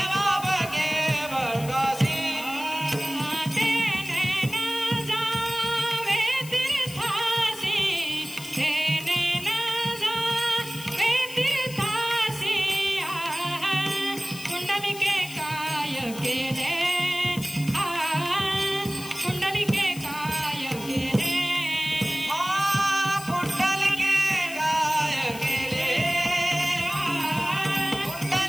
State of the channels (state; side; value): noise; left; hiss, 14 dB below the sound